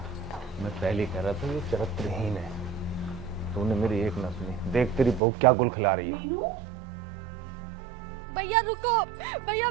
मैं पहले कह रहा था ये चरित्रहीन है, तूने मेरी एक न सुनी। देख तेरी बहू क्या गुल खिला रही है। भैया रुको, भैया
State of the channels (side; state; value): left; drops out; at 5.2 s